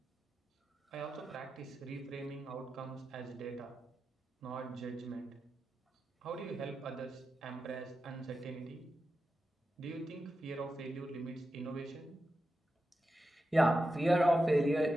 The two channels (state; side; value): normal; both; correlation 0.90